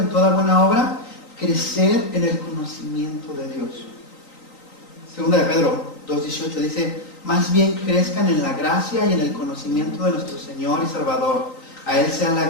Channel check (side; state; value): right; late; 3.9 ms